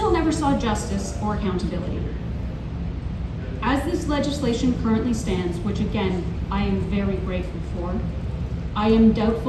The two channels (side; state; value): both; identical; correlation 1.00